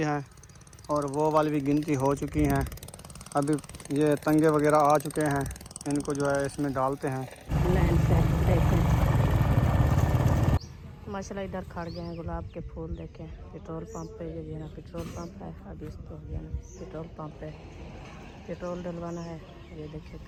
है और वो वाली भी गिनती हो चुकी हैं। अभी ये तंगे वगैरह आ चुके हैं, इनको जो है इसमें डालते हैं। माशाल्लाह इधर खड़ गए हैं गुलाब के फूल। देखें पेट्रोल पंप पे ये ना पेट्रोल पंप है। अभी इसको हो गया ना पेट्रोल पंप पे पेट्रोल डलवाना है। ये देखिए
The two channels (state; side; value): identical; both; correlation 1.00